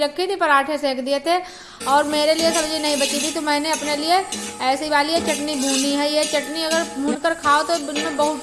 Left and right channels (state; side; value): identical; both; correlation 1.00